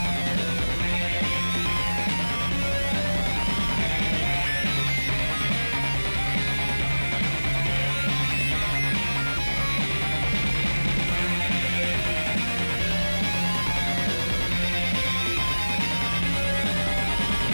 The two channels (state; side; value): inverted; both; correlation -1.00